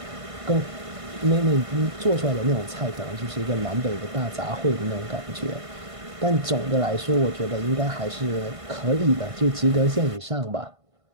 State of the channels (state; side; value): late; left; 1.5 ms